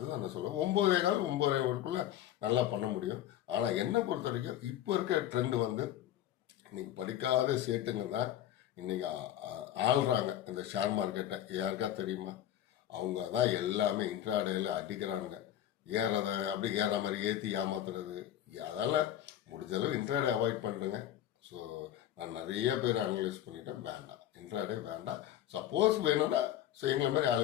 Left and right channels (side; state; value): right; quieter; 11.9 dB